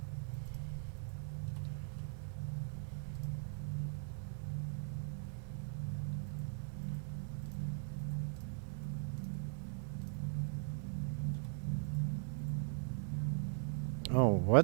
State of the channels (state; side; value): silent; left; 51 dB below the other